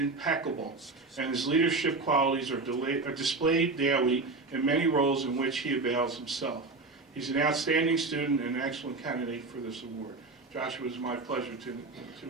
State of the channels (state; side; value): quieter; left; 3.7 dB